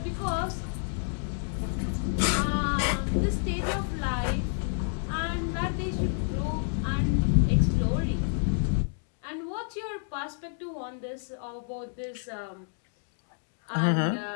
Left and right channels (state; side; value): silent; right; 58 dB below the other